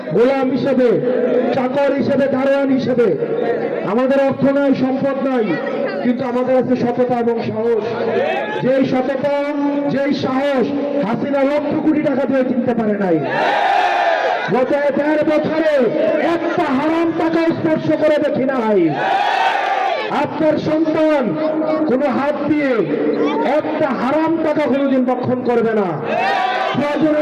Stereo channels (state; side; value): identical; both; correlation 1.00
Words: গোলাম হিসেবে, চাকর হিসেবে, দারোয়ান হিসেবে। আমাদের অর্থ নাই, সম্পদ নাই, কিন্তু আমাদের আছে সততা এবং সাহস। যেই সততা, যেই সাহস হাসিনা লক্ষ কোটি টাকা দিয়ে কিনতে পারে নাই। গত ১.৫ বছরে একটা হারাম টাকা স্পর্শ করে দেখি নাই। আপনার সন্তান কোনো হাত দিয়ে একটা হারাম টাকা কোনোদিন ভক্ষণ করবে না। প্রয়োজন